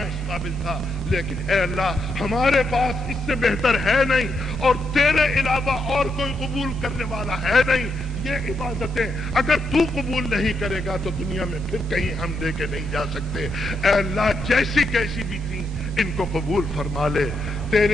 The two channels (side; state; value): both; normal; correlation 0.81